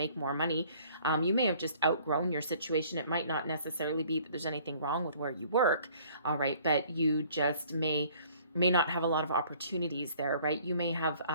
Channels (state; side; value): inverted; both; correlation -0.56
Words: more money, you may have just outgrown your situation. It might not necessarily be that there's anything wrong with where you work, all right, but you just may not have a lot of opportunities there, right? You may have